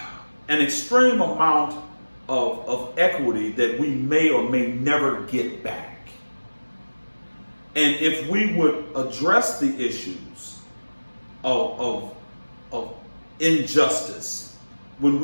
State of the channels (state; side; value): inverted; both; correlation -1.00